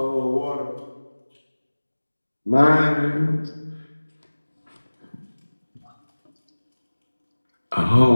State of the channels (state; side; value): inverted; both; correlation -1.00